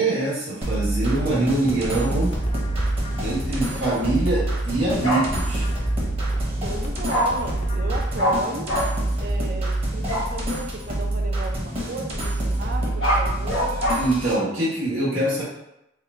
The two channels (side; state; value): both; normal; correlation 0.59